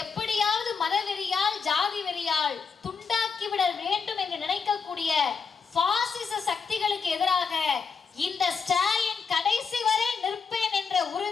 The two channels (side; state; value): right; quieter; 5.6 dB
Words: எப்படியாவது மதவெறியால் ஜாதி வெறியால் துண்டாக்கிவிட வேண்டும் என்று நினைக்கக்கூடிய பாசிச சக்திகளுக்கு எதிராக இந்த ஸ்டாலின் கடைசி வரை நிற்பேன் என்ற